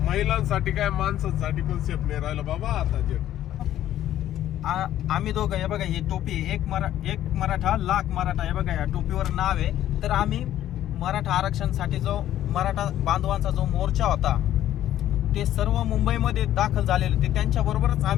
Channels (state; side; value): quieter; right; 12.3 dB